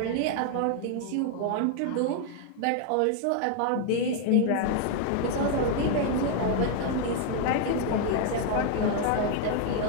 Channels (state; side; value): different; both; correlation 0.00